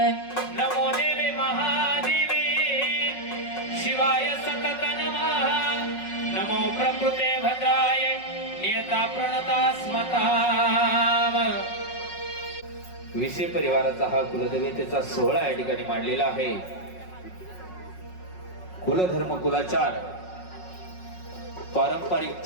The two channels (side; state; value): right; late; 5.5 ms